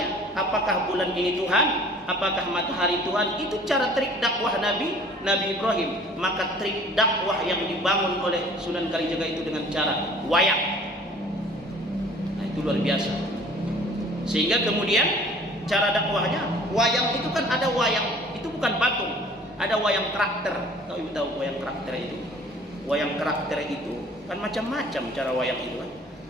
apakah bulan ini Tuhan? Apakah matahari Tuhan? Itu cara trik dakwah Nabi Ibrahim. Maka trik dakwah yang dibangun oleh Sunan Kalijaga itu dengan cara wayang. Nah, itu luar biasa. Sehingga kemudian cara dakwahnya, wayang itu kan ada wayang, itu bukan patung. Ada wayang karakter. Tahu wayang karakter itu? Wayang karakter itu kan macam-macam cara wayang itu kan.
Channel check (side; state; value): both; normal; correlation 0.50